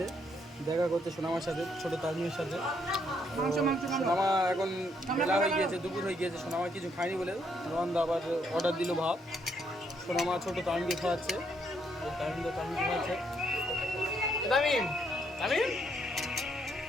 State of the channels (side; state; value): both; normal; correlation 0.72